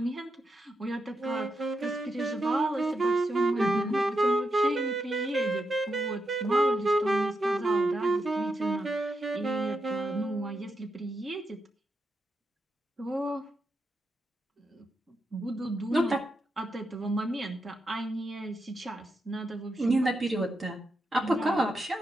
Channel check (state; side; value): normal; both; correlation 0.85